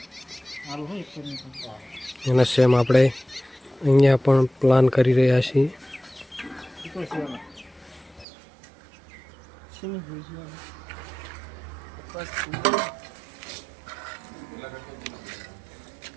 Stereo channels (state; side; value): drops out; left; at 8.2 s